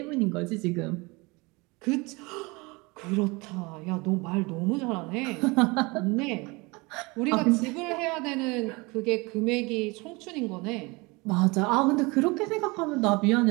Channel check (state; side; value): quieter; left; 25.6 dB